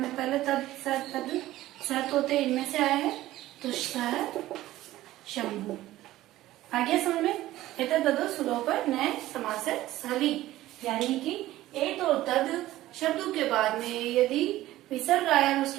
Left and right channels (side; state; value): left; quieter; 15.6 dB